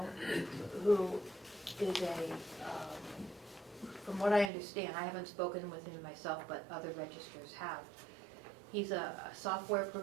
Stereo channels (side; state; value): left; drops out; at 4.5 s